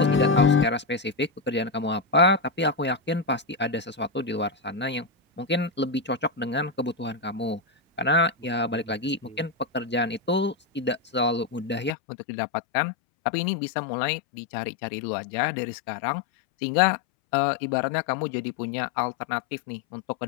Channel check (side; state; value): right; drops out; at 11.9 s